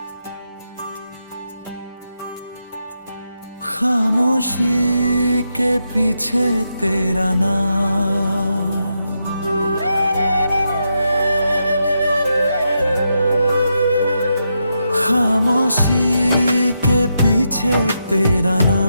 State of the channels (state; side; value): inverted; both; correlation -0.84